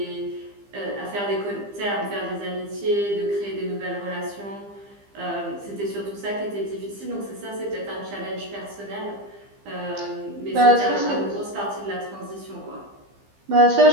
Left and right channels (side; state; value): left; late; 15 ms